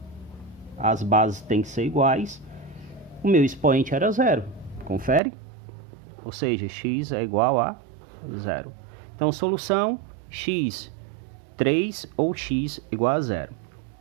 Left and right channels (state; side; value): drops out; left; at 5.2 s